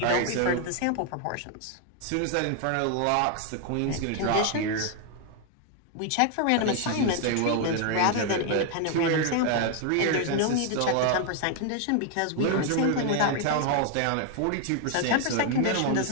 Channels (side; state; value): both; different; correlation 0.00